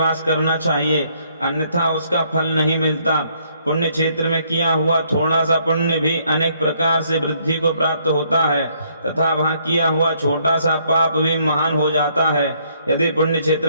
करना चाहिए, अन्यथा उसका फल नहीं मिलता। पुण्य क्षेत्र में किया हुआ थोड़ा सा पुण्य भी अनेक प्रकार से वृद्धि को प्राप्त होता है तथा वहां किया हुआ छोटा सा पाप भी महान हो जाता है। यदि पुण्य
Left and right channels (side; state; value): both; inverted; correlation -0.68